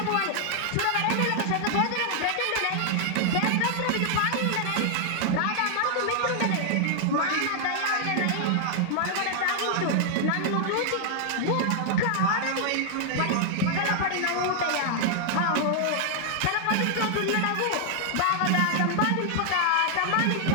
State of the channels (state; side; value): different; both; correlation 0.00